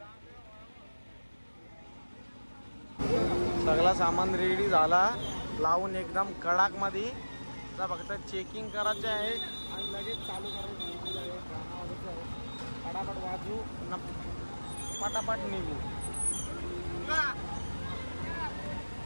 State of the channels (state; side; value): inverted; both; correlation -1.00